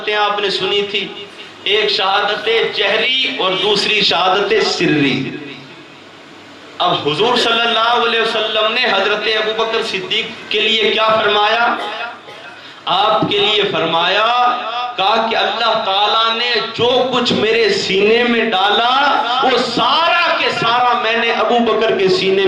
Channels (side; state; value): both; identical; correlation 1.00